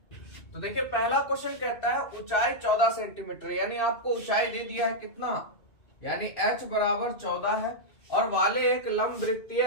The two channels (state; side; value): late; right; 2.6 ms